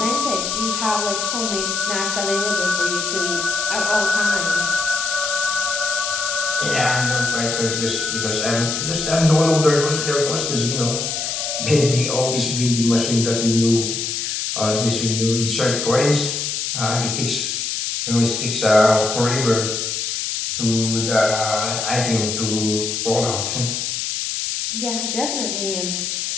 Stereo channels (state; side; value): noise; left; hiss, 2 dB below the sound